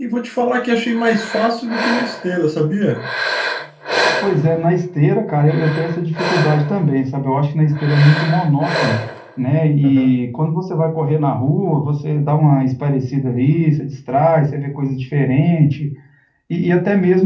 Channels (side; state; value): both; identical; correlation 1.00